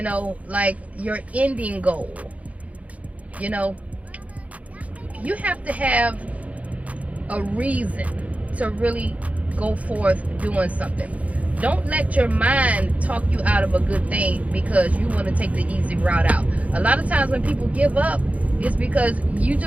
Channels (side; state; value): left; late; 0.067 ms